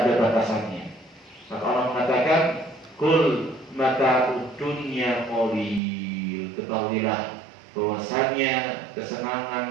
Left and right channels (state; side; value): drops out; left; at 5.8 s